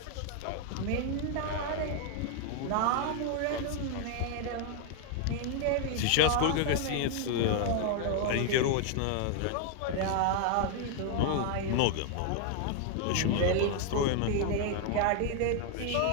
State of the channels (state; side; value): different; both; correlation 0.00